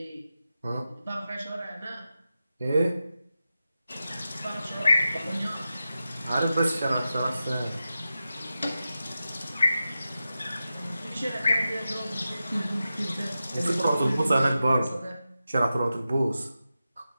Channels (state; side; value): inverted; both; correlation -0.92